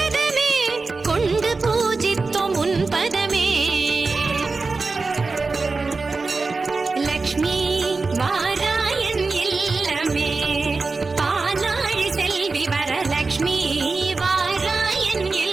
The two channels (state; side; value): quieter; left; 4.0 dB